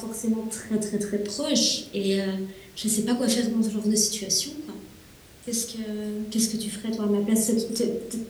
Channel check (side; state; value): both; identical; correlation 1.00